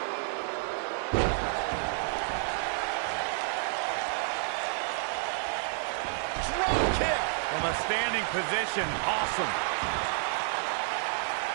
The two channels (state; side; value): silent; left; 58 dB below the other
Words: Drop kick from a standing position. Awesome.